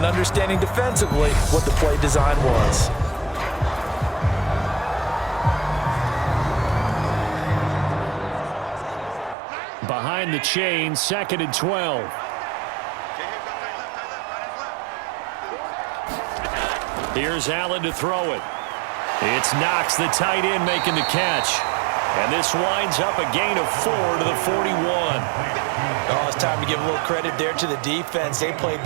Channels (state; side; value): drops out; left; at 9.3 s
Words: understanding defensively what the play design was. Behind the chain, 2nd and 12. Here's Allen to throw it. It's Knox, the tight end, making the catch. And this winds up a gain of 4 to the 41. Oh, it's time to give a little credit there to the defense. They played